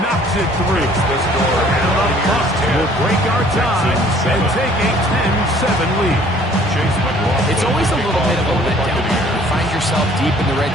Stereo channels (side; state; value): both; normal; correlation 0.56